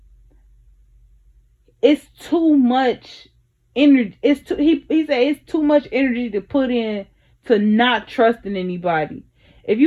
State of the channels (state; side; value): identical; both; correlation 1.00